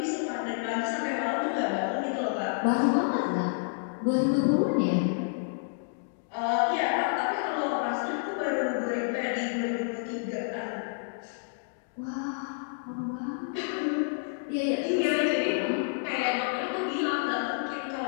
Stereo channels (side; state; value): right; silent; digital silence